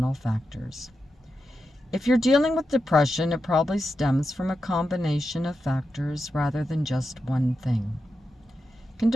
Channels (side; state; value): both; normal; correlation 0.88